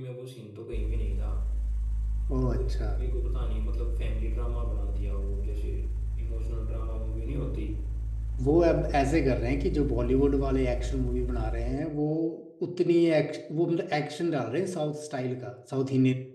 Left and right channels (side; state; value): both; identical; correlation 1.00